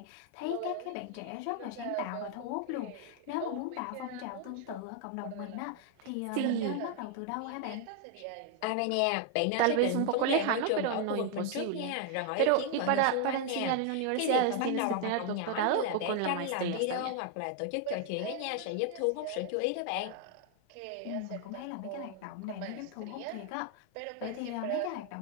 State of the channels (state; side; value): different; both; correlation 0.00